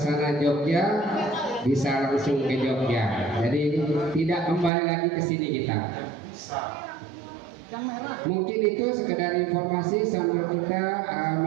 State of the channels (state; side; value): drops out; left; at 4.7 s